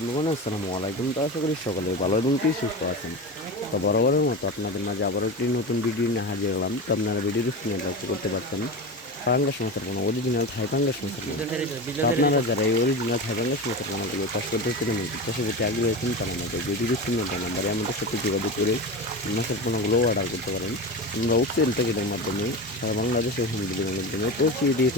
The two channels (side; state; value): both; normal; correlation 0.25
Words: আসসালামু আলাইকুম। তো আশা করি সকলে ভালো এবং কি সুস্থ আছেন। তো বরাবরের মতো আপনাদের মাঝে আবারও একটি নতুন ভিডিও নিয়ে হাজির হলাম। তো আপনারা ভিডিওর স্ক্রিনে লক্ষ্য করতে পারছেন পাঙ্গাস মাছের পোনা, অরিজিনাল থাই পাঙ্গাস মাছের পোনা। তো আপনারা যারা এই অরিজিনাল থাই পাঙ্গাস মাছের পোনাগুলো চাষ করতে চান এবং চাষের প্রতি আগ্রহী আছেন, তারা আমাদের ভিডিওর স্ক্রিনে দেওয়া নাম্বারে আমাদের সাথে যোগাযোগ করে মাছের পোনাগুলো অর্ডার করতে পারেন। আমরা অক্সিজেন প্যাকেটের মাধ্যমে সারা বাংলাদেশে হোম ডেলিভারির মাধ্যমে পৌঁছিয়ে দিয়ে